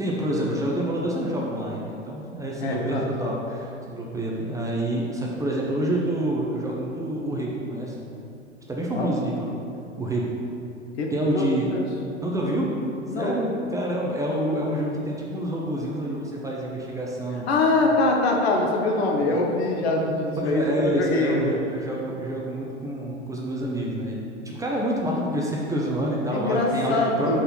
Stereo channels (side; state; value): both; normal; correlation 0.35